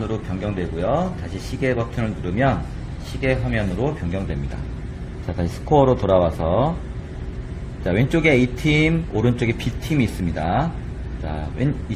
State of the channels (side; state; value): both; identical; correlation 1.00